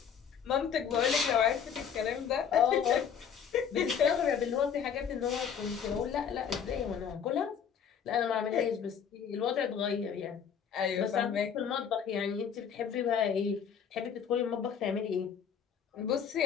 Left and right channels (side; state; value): right; quieter; 7.6 dB